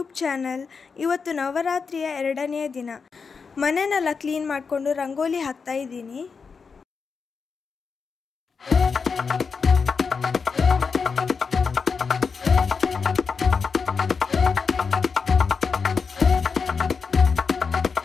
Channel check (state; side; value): quieter; right; 5.3 dB